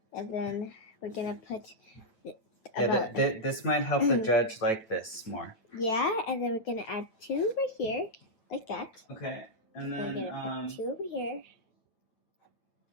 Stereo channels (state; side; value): late; right; 9.0 ms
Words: and then we're gonna put. This might help the judge like this more. Yeah, and then we're gonna add 2 right here, like that. Okay, and then we're gonna put 2 over here,